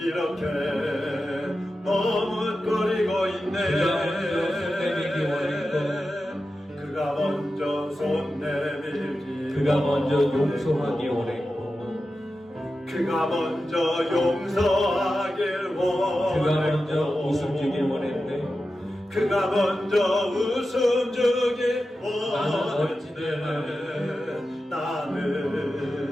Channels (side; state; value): both; normal; correlation 0.92